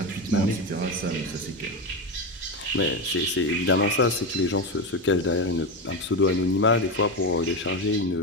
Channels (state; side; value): normal; both; correlation 0.15